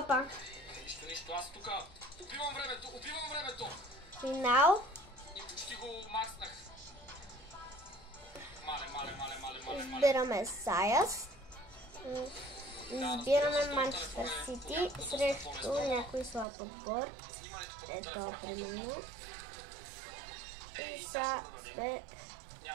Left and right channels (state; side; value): drops out; left; at 16.4 s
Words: Опа. Нищо, аз тук убивам времето. Финал. И почти го макснах. Мале. Избираме Саяс. Избираме Манчестър Сити срещу някой слаб отбор. Ето, примерно. И са